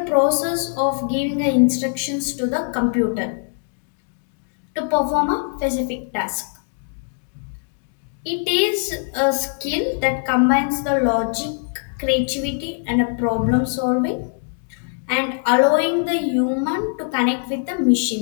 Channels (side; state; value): right; silent; 64 dB below the other